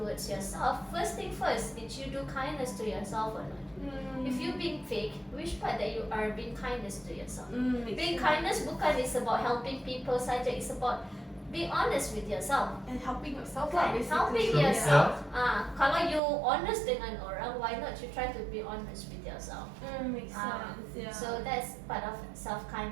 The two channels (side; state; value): left; drops out; at 16.2 s